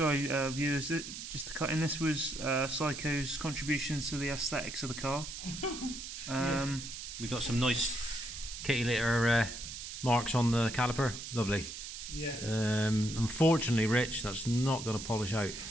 viewers. Just to cut in, this was Psycho's contribution to the aesthetics of the car. We've got some nice kitty litter marks on the caliper. Lovely. Yeah. Unfortunately, Rich, that's not going to polish out.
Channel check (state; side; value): noise; right; hiss, 9 dB below the sound